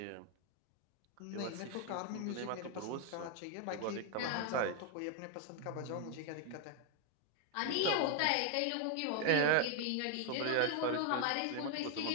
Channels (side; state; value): both; different; correlation 0.00